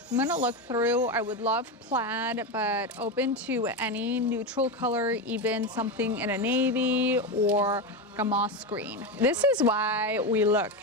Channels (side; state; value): both; normal; correlation 0.15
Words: I'm gonna look through. I would love plaid, but open to any neutral color, even something in a navy or like a moss green. This is why we look